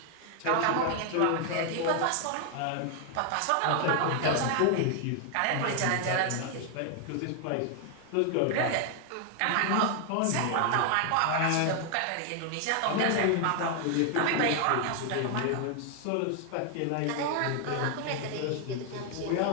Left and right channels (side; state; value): both; different; correlation 0.00